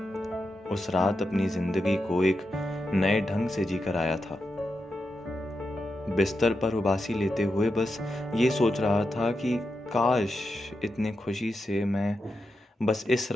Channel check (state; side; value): normal; both; correlation 0.87